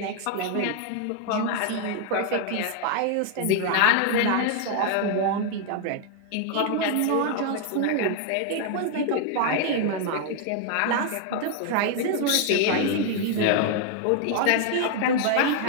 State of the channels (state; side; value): different; both; correlation 0.00